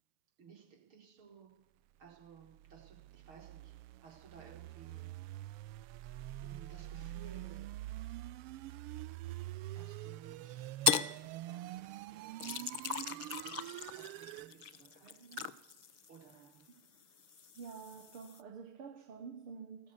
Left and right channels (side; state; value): left; late; 6.8 ms